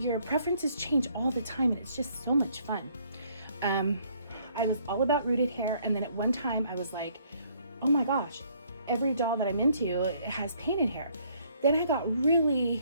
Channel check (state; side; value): inverted; both; correlation -0.64